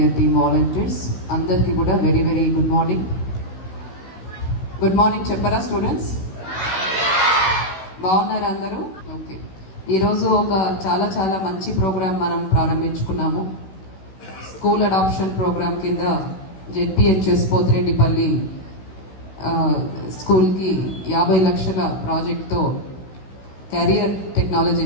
team volunteers అందరికీ కూడా very very good morning. Good morning చెప్పరా స్టూడెంట్స్? బాగున్నారు అందరూ? ఓకే. ఈరోజు ఒక చాలా చాలా మంచి ప్రోగ్రాం మనం ప్రారంభించుకున్నాము. స్కూల్ అడాప్షన్ ప్రోగ్రాం కింద జెడ్పిహెచ్ఎస్ పోతిరెడ్డిపల్లి స్కూల్కి 50 లక్షల ప్రాజెక్ట్తో కెరియర్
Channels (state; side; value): late; right; 16 ms